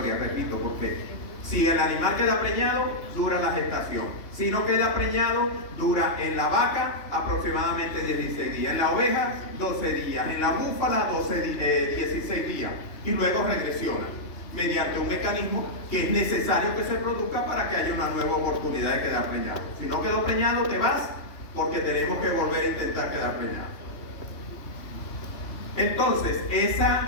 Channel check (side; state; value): right; late; 3.2 ms